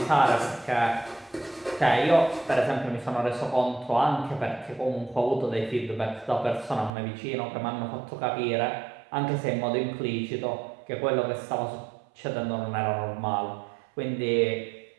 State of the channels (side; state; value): left; drops out; at 6.9 s